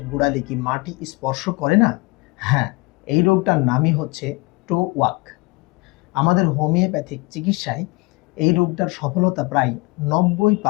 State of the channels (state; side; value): quieter; right; 25.4 dB